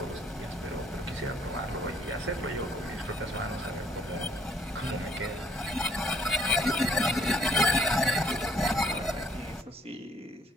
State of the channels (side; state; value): both; normal; correlation 0.63